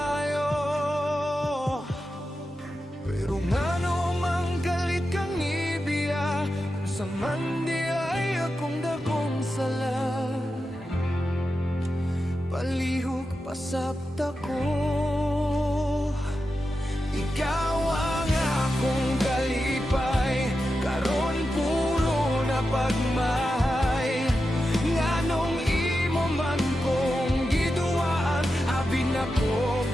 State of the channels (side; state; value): both; normal; correlation 0.90